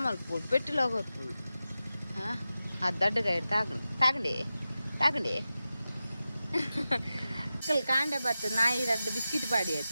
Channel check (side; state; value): both; inverted; correlation -0.93